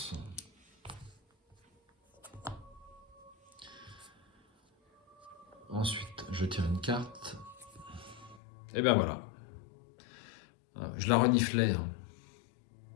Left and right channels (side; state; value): right; drops out; at 8.4 s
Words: Ensuite, je tire une carte. Et bien voilà. Je la reniflais. Hein.